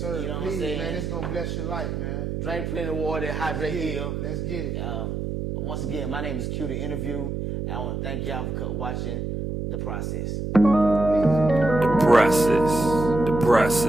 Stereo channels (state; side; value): noise; right; hum, 4 dB below the sound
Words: You know Please, what I'm saying? man, it's going to bless your life, man. Drink plenty of water, hydrate Hill. Let's get it. Once again, my name is Q the Interview. I want to thank y'all for watching The Process. The process. The